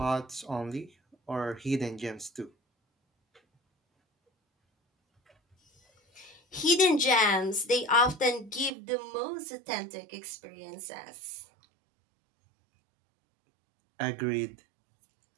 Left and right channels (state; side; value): drops out; left; at 8.7 s